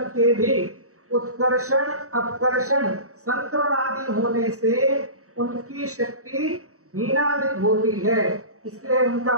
के भी उत्कर्षण अपकर्षण संक्रमण आदि होने से उनकी शक्ति हीनाधिक होती है, इसलिए उनका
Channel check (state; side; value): late; left; 0.64 ms